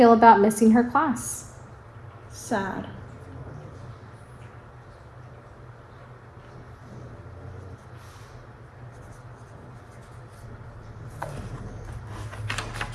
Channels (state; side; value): identical; both; correlation 1.00